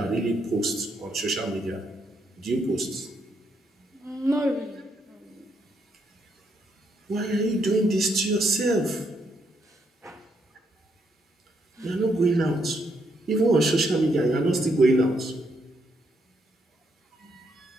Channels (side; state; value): both; normal; correlation 0.75